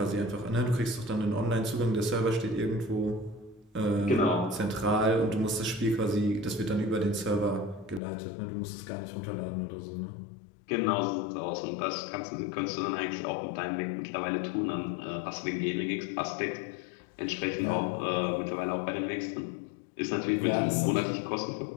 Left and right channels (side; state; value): right; drops out; at 8.0 s